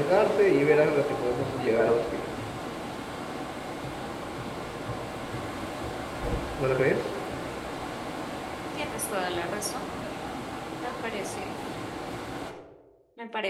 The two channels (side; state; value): both; identical; correlation 1.00